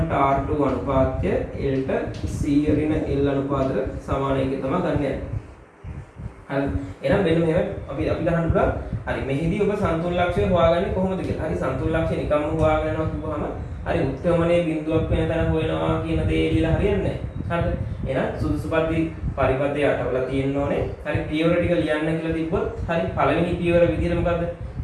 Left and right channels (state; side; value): identical; both; correlation 1.00